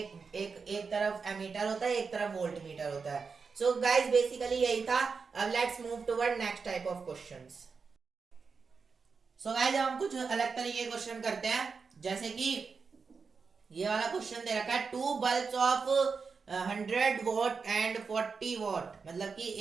तरफ एमीटर होता है, एक तरफ वोल्ट मीटर होता है। सो गाइस बेसिकली यही था। अब let's move toward next type of questions. So guys हम कुछ अलग तरीके के क्वेश्चन करते हैं, जैसे कि ये वाला क्वेश्चन दे रखा है, two bulbs of 100 watt and 40 watt, मतलब कि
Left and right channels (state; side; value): quieter; left; 5.1 dB